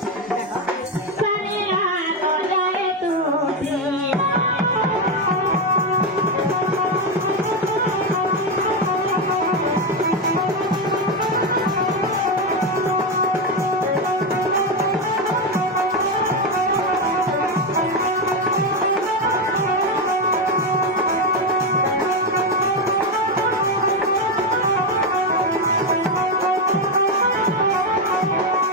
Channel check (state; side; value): normal; both; correlation 0.09